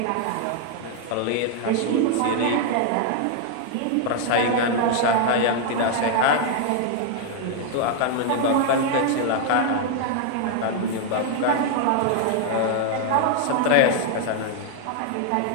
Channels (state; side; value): different; both; correlation 0.00